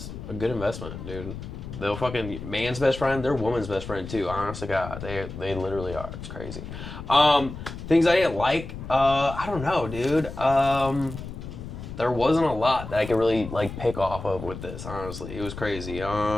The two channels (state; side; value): noise; left; rumble, 10 dB below the sound